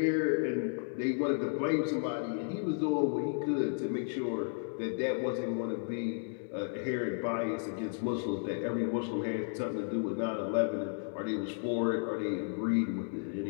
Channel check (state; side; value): silent; right; digital silence